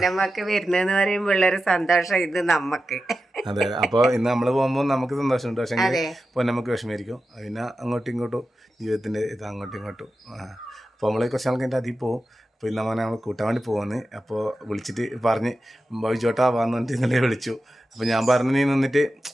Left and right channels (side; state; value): both; normal; correlation 0.92